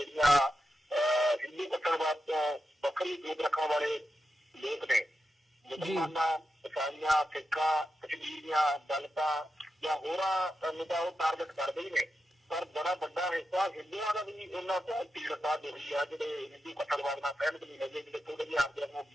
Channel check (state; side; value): normal; both; correlation 0.88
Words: ਹਿੰਦੂ ਕੱਟੜਵਾਦ ਤੋਂ ਵੱਖਰੀ ਸੋਚ ਰੱਖਣ ਵਾਲੇ ਲੋਕ ਨੇ, ਮੁਸਲਮਾਨਾਂ, ਈਸਾਈਆਂ, ਸਿੱਖਾਂ, ਕਸ਼ਮੀਰੀਆਂ, ਦਲਿਤਾਂ ਜਾਂ ਹੋਰਾਂ ਨੂੰ ਤਾਂ ਉਹ ਟਾਰਗੇਟ ਕਰਦੇ ਹੀ ਨੇ। ਪਰ ਬੜਾ ਵੱਡਾ ਹਿੱਸਾ ਹਿੰਦੂਆਂ ਦਾ ਵੀ ਉਹਨਾਂ ਤੋਂ ਪੀੜਤਾ ਹੋਈ ਆ, ਜਿਹੜੇ ਹਿੰਦੂ ਕੱਟੜਵਾਦ ਨਾਲ ਸਹਿਮਤ ਨਹੀਂ ਹੈਗੇ, ਜਿਹੜੇ ਥੋੜੇ ਜਿਹੇ ਆਪਦੇ ਨੂੰ